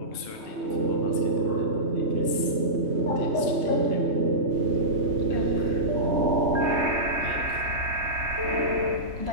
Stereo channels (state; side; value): late; left; 3.2 ms